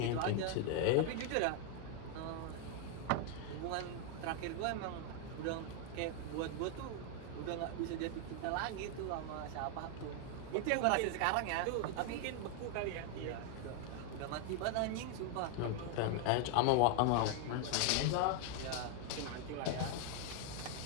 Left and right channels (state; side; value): different; both; correlation 0.00